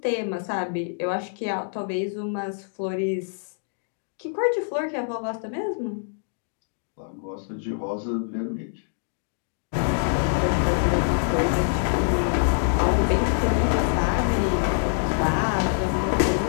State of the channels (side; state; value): right; silent; digital silence